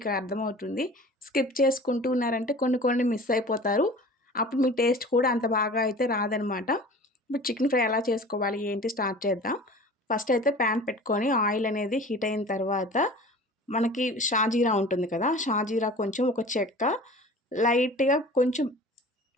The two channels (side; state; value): both; normal; correlation 0.41